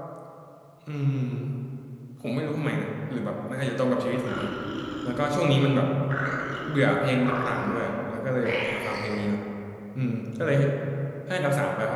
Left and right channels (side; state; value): both; identical; correlation 1.00